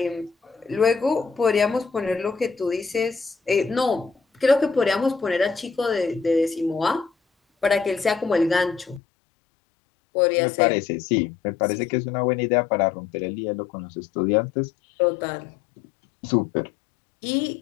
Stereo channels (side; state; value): right; drops out; at 9.0 s